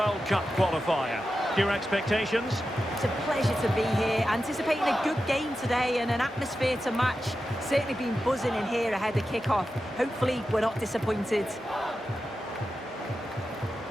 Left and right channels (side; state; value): both; normal; correlation 0.91